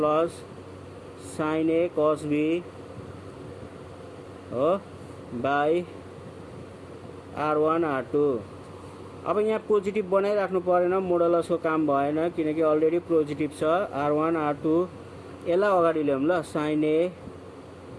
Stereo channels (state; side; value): identical; both; correlation 1.00